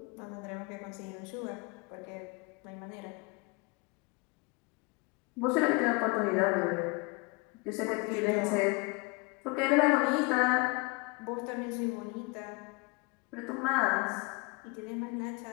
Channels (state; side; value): quieter; right; 28.0 dB